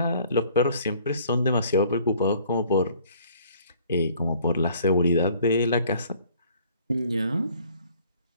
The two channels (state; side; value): inverted; both; correlation -0.57